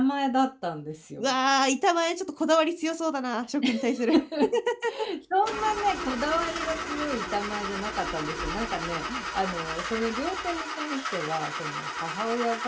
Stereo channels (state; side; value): identical; both; correlation 1.00